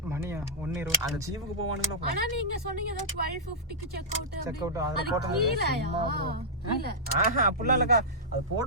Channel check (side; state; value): both; normal; correlation -0.12